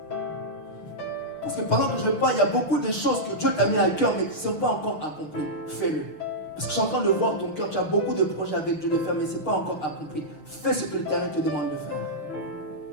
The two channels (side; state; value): right; late; 6.6 ms